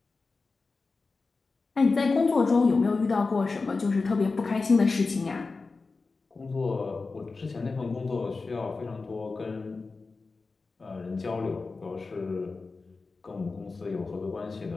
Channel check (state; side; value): quieter; right; 4.0 dB